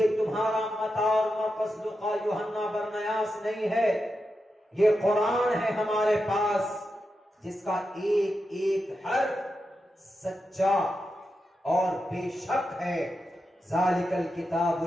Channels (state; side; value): normal; both; correlation 0.88